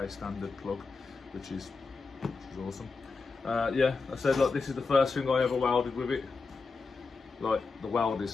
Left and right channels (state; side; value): quieter; right; 4.3 dB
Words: standard plug, which is awesome. Yeah, I said, look, this is the first thing I ever welded with it. Like, the weld